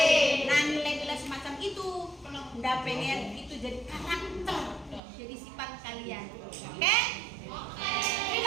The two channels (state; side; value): drops out; left; at 5.0 s